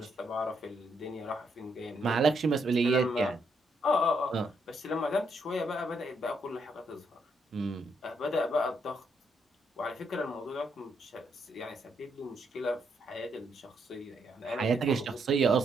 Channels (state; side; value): normal; both; correlation 0.76